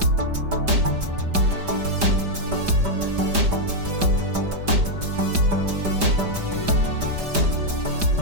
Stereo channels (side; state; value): left; late; 5.1 ms